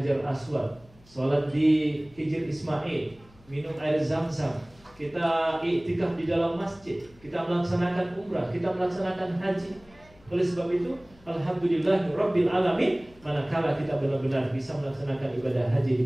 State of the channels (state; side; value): noise; left; hum, 27 dB below the sound